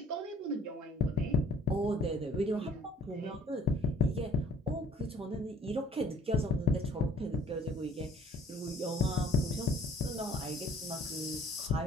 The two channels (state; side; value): normal; both; correlation 0.54